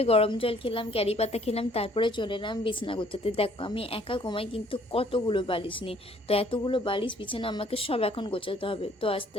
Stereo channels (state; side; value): normal; both; correlation 0.61